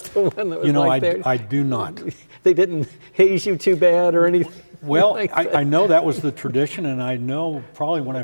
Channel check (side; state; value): both; inverted; correlation -1.00